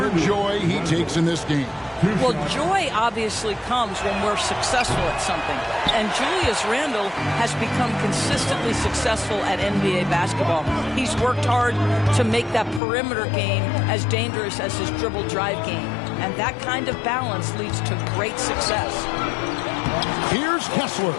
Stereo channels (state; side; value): drops out; right; at 12.8 s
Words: joy he takes in this game. Well, joy obviously comes when we're successful at something. And Julius Randle has become consistently successful at NBA basketball. He's worked hard to make that perimeter game as dangerous as his dribble drive game. And that kind of balance leads to great success. Here's Kessler.